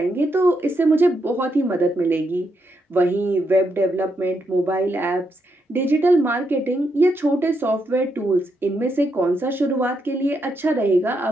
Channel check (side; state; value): both; normal; correlation 0.80